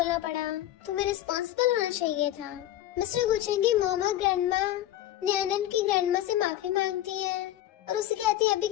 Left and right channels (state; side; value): quieter; right; 13.3 dB